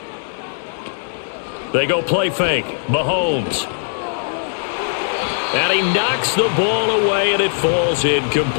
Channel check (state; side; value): silent; right; digital silence